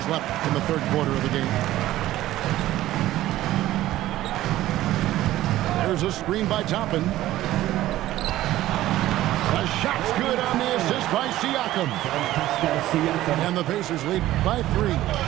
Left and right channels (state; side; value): quieter; left; 14.9 dB